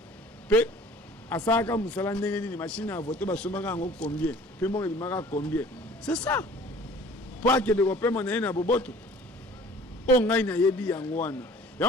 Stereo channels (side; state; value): both; normal; correlation 0.50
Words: pe asaka musala ndenge ni machine à voter ba somaka ngo combien pe mo ebimaka combien. C'est ça. Pour que les Européens m'en aient un boboto. On a une yebi yangwana.